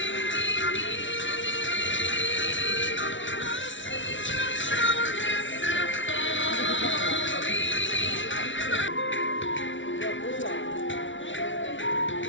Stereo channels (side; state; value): right; late; 0.56 ms